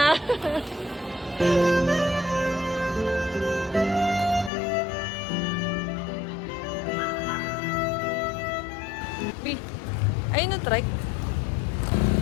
Ayun na trike.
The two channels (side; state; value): right; drops out; at 4.5 s